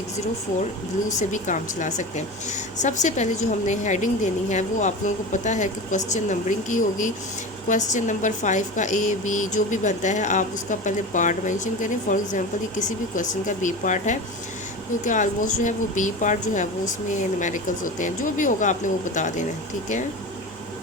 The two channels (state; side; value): normal; both; correlation 0.29